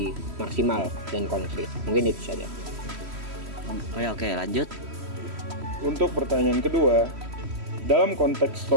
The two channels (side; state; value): left; late; 3.1 ms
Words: maksimal dan konkret. Mungkin itu saja. Oke, lanjut. Untuk pertanyaan kedua, dalam konteks